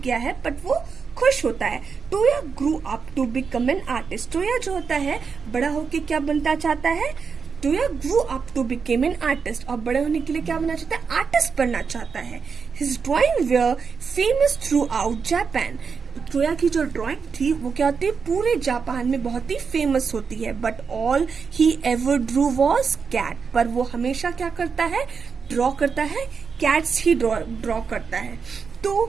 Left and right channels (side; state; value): left; quieter; 5.7 dB